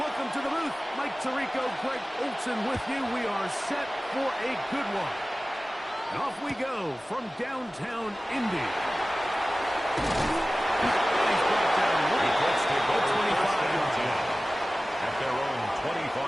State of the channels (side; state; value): both; normal; correlation 0.97